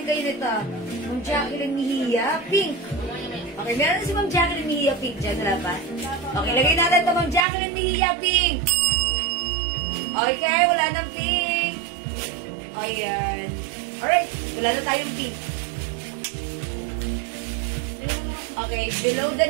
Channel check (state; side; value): drops out; left; at 7.4 s